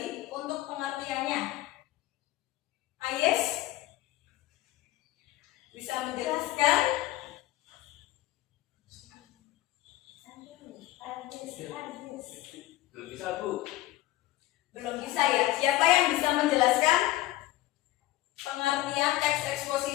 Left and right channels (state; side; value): quieter; right; 16.5 dB